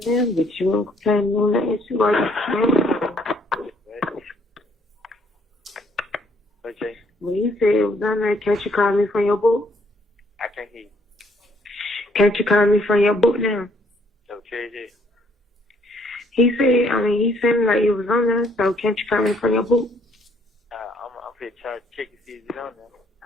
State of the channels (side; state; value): both; normal; correlation 0.66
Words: them, but you won't play them on the issue while you're playing. What, Jay? When you said it was on there, can't you call me from your book? I can't hear you. Can't you call me from your book now? So, KJ? He said, he said like it was on there, so can't you call me from your book? I'm finna try to check and see if it's on there.